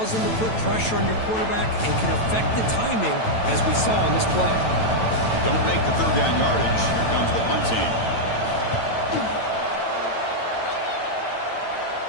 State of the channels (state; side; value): late; right; 9.0 ms